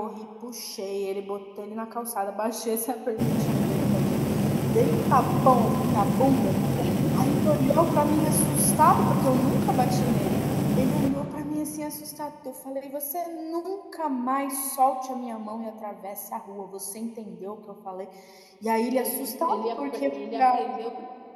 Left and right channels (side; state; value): both; identical; correlation 1.00